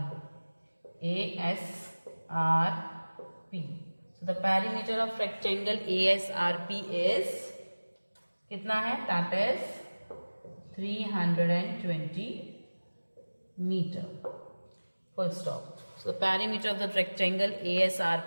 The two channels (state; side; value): inverted; both; correlation -1.00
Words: ASRP. So the perimeter of rectangle ASRP is कितना है? That is 320 meter. Full stop. So the perimeter of the rectangle